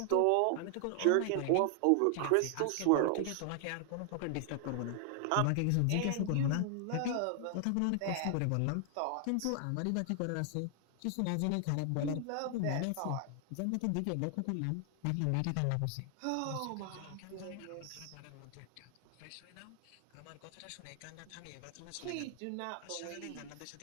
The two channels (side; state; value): both; different; correlation 0.00